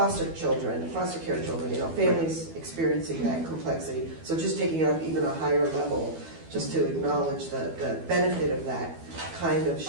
children, foster care children, you know, families experiencing that complexity. So just taking it up even a higher level, just to acknowledge the benefit of that kind of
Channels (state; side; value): late; left; 12 ms